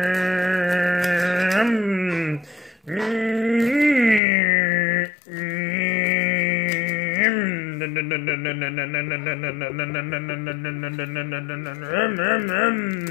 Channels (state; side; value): drops out; right; at 4.2 s